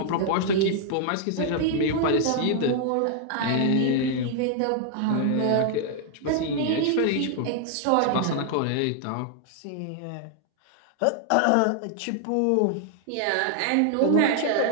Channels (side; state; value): both; different; correlation 0.00